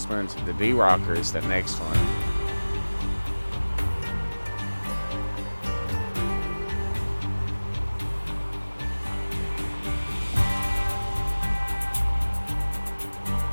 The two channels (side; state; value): both; inverted; correlation -1.00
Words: The D-Rocker is the next one.